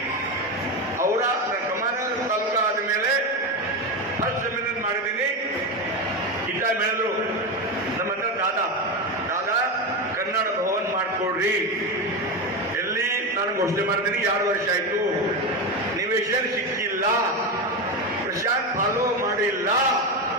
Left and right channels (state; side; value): normal; both; correlation 0.16